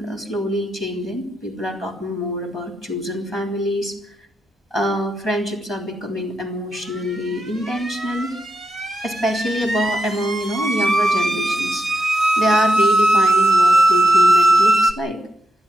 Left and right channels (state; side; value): normal; both; correlation 0.85